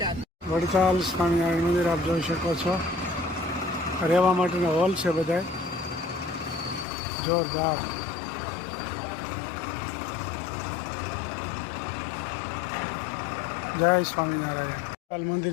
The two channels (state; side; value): drops out; right; at 6.9 s